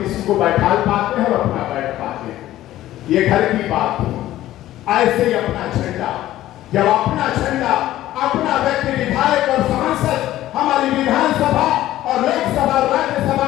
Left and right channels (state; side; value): quieter; right; 14.3 dB